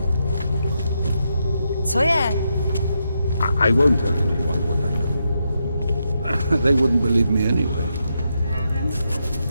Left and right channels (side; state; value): both; inverted; correlation -0.83